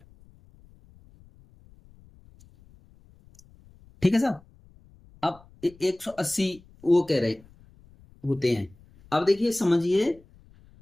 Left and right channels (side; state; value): left; noise; rumble, 27 dB below the sound